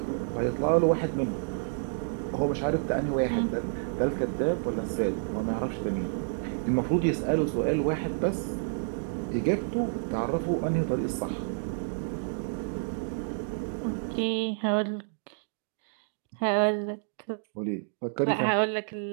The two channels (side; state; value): left; silent; digital silence